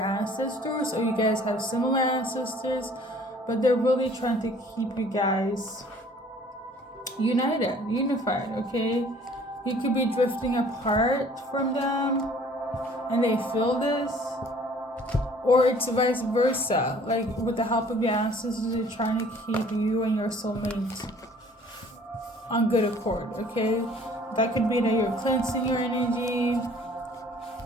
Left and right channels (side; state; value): both; normal; correlation 0.54